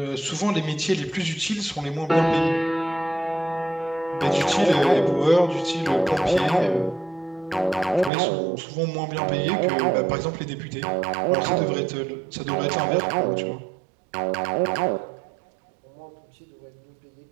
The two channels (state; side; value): drops out; left; at 8.1 s